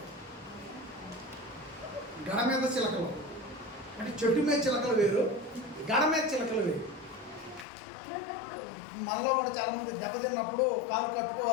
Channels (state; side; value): drops out; right; at 7.7 s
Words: గడ మీద చిలకలు అంటే చెట్టు మీద చిలకలు వేరు, గడ మీద చిలకలు వేరు. మనలో కూడా చాలామంది దెబ్బతిన్నప్పుడు కాలు